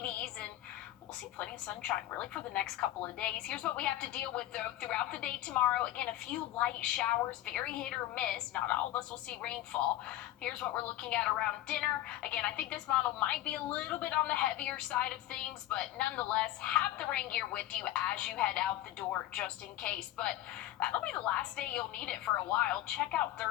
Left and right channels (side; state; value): right; quieter; 14.5 dB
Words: and we'll see plenty of sunshine really for the next couple of days. Here's what we have to deal with, though, throughout the day tomorrow. Again, a few light showers, very hit or miss. Not all of us will see rainfall. Here's what we're looking at around dinner. Again, I think this model might be a little bit on the heavier side of things, but nonetheless, have the rain gear with you as you head out the door just in case. But that'll be the last day you'll need it for a while. Check out